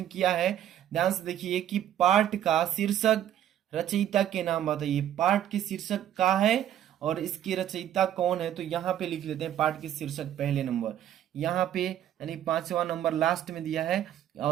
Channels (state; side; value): quieter; left; 11.1 dB